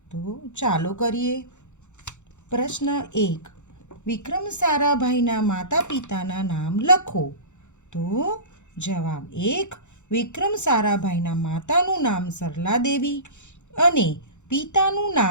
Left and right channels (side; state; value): right; late; 0.84 ms